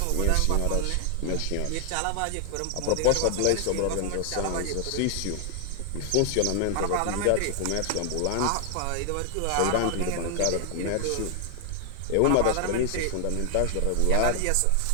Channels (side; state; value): both; different; correlation 0.00